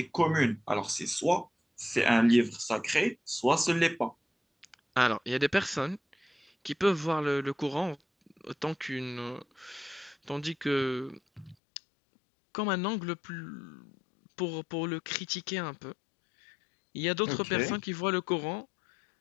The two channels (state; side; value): drops out; right; at 11.6 s